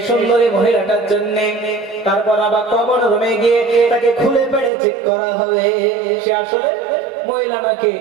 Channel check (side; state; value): left; drops out; at 4.7 s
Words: সুন্দরী মহিলাটার জন্য। তারপর আবার কমন রুমে গিয়ে তাকে খুলে পেড়ে চেক করা হবে সে আসলে মহিলা নাকি